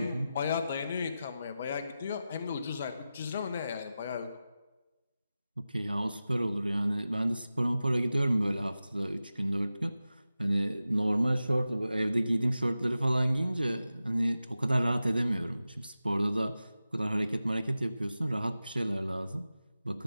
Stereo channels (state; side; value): inverted; both; correlation -0.94